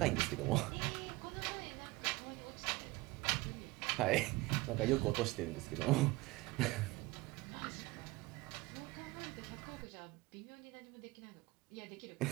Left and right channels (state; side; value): quieter; left; 21.2 dB